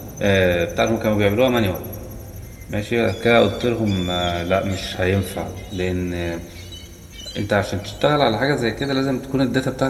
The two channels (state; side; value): identical; both; correlation 1.00